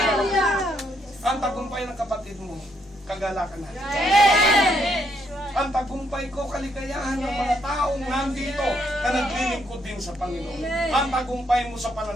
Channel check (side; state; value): both; normal; correlation 0.74